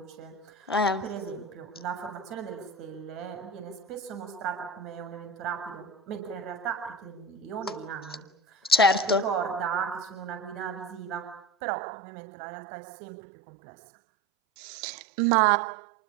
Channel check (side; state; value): left; drops out; at 11.5 s